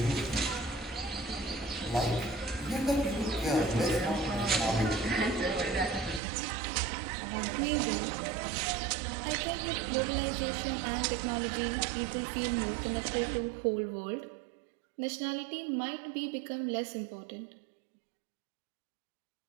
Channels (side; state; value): left; drops out; at 6.2 s